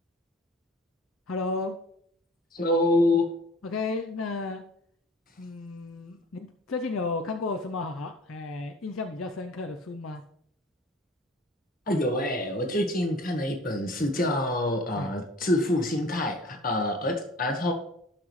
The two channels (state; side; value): normal; both; correlation 0.46